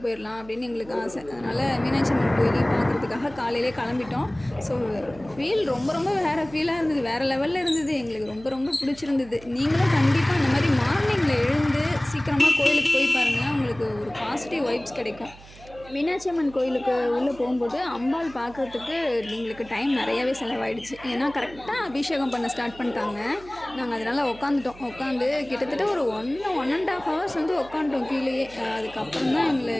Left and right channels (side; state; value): right; noise; hum, 20 dB below the sound